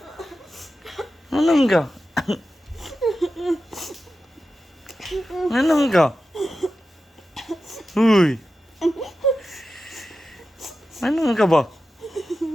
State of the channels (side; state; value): both; normal; correlation 0.92